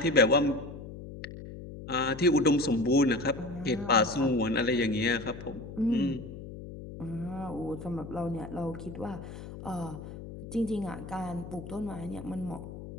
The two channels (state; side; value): noise; left; hum, 12 dB below the sound